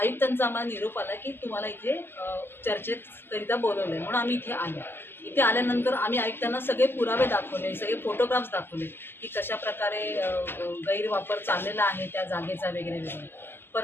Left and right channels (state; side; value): late; right; 0.11 ms